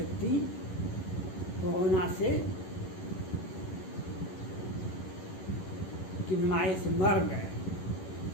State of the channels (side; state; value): right; late; 11 ms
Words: कोरोना से की बीमारी से मर गए।